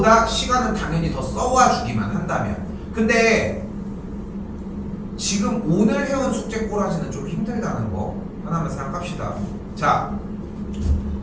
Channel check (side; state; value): both; identical; correlation 1.00